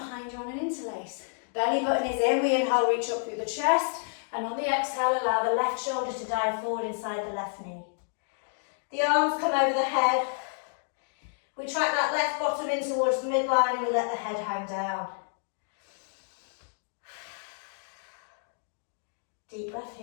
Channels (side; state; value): right; silent; digital silence